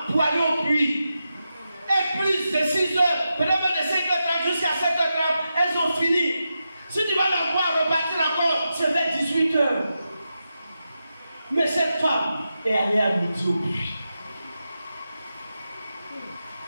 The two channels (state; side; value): inverted; both; correlation -0.89